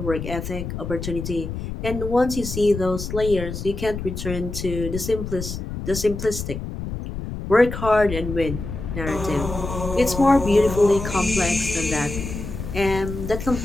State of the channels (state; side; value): noise; left; rumble, 7 dB below the sound